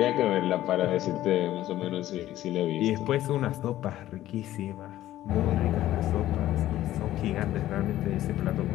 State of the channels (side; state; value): right; quieter; 14.0 dB